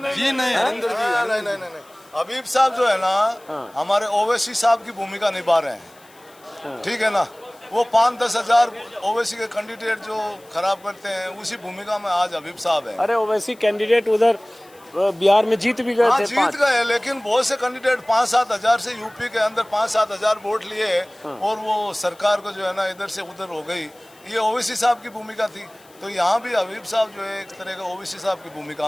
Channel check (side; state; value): left; noise; hiss, 28 dB below the sound